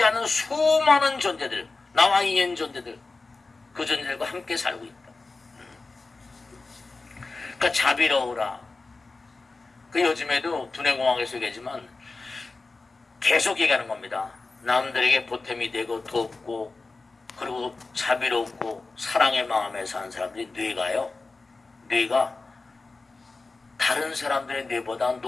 않는 수많은 존재들, 나와 인연 존재들, 그 존재들과 함께 살고 있다. 그러니까 자비로우라. 그 요즘에도 두뇌공학에서 얘기하지만 계속 얘기하는 겁니다. 남들에게 보탬이 되고 돕고 그리고 자비롭고 사랑의 마음에 사는 사람들이 뇌가 다른 사람들의 뇌보다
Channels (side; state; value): right; quieter; 3.7 dB